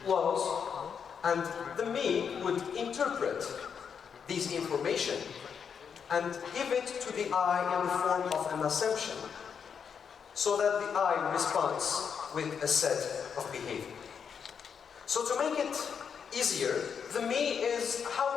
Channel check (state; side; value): quieter; right; 6.9 dB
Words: laws, and the me would interpret these information and give it to the I in the form of an assumption, so that the I responds with a set of behavior. So to make it easier, the me is